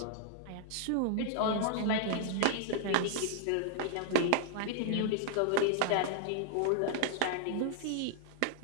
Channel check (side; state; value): both; different; correlation -0.01